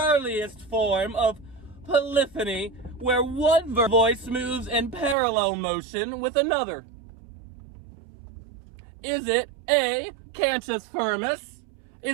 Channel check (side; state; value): left; drops out; at 5.2 s